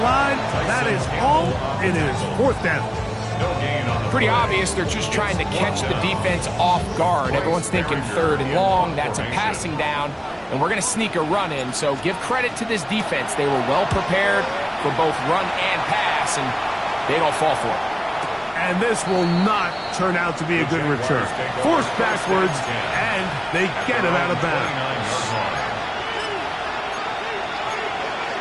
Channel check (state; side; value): identical; both; correlation 1.00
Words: line. That is all. It is fourth down. Pretty obvious they're just trying to catch the defense off guard. Everyone's thinking third and long. That's a passing down, and we're going to sneak a run in. So give credit to this defense. They were well prepared for both run and pass, and they don't fall for it. And this will not turn out to be a good return. Forced backwards, and they get him out of bounds.